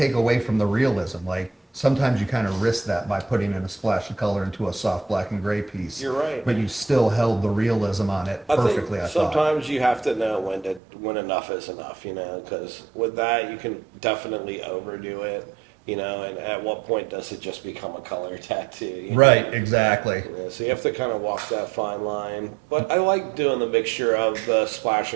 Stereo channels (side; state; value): left; drops out; at 10.8 s